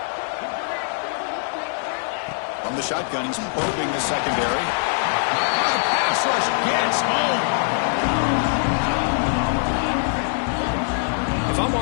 From the shotgun, he's probing the secondary. The pass rush gets home. If I'm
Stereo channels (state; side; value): silent; right; digital silence